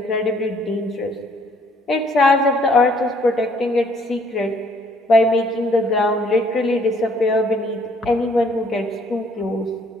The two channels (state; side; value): normal; both; correlation 0.63